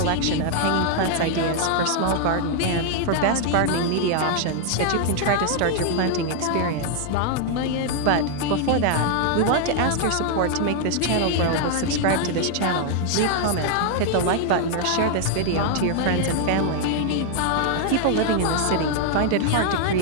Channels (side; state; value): both; different; correlation 0.00